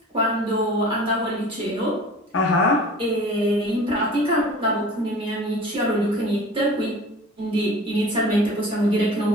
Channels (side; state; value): both; normal; correlation 0.42